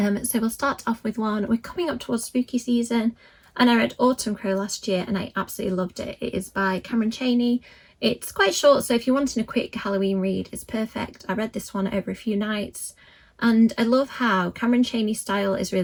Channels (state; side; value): identical; both; correlation 1.00